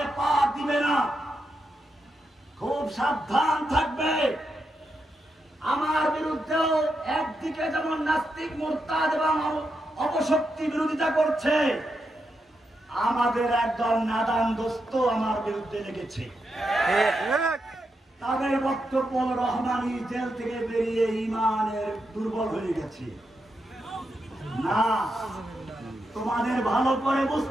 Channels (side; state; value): both; normal; correlation 0.84